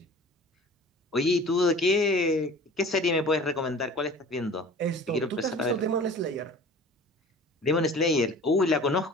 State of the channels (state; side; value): normal; both; correlation 0.43